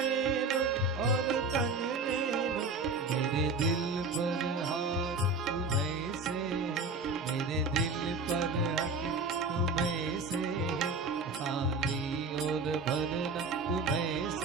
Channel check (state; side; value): quieter; left; 3.7 dB